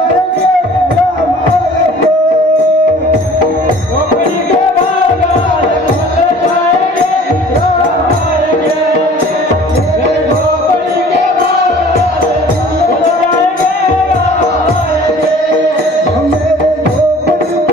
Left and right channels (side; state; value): both; normal; correlation 0.48